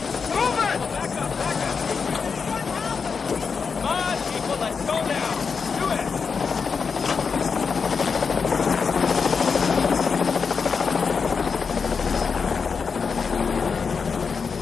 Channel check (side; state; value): right; quieter; 5.5 dB